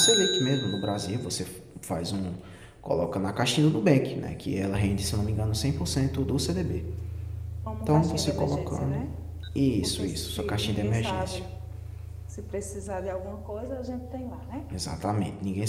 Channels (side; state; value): both; identical; correlation 1.00